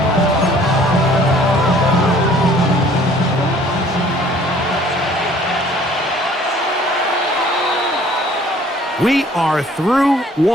We are through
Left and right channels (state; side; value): normal; both; correlation 0.55